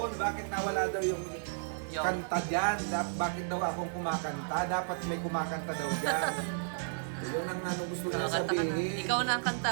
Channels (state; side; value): silent; left; digital silence